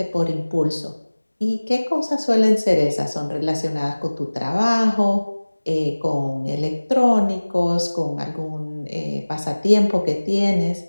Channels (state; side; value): inverted; both; correlation -1.00